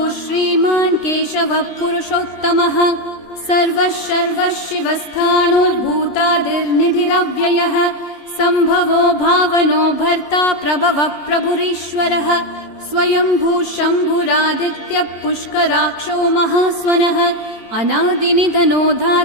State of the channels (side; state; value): right; late; 14 ms